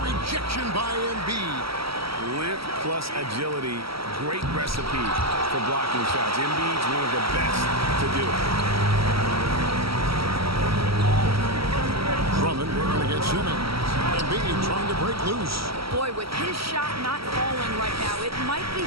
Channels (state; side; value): late; left; 0.75 ms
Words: by Embiid. Length plus agility, great recipe for blocking shots. Embiid's one of the best to do it. Drummond working against Simmons. Embiid trying to break loose. Boy, with his shot not falling right now, it might be